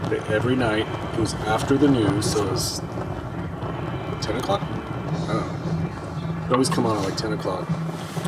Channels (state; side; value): identical; both; correlation 1.00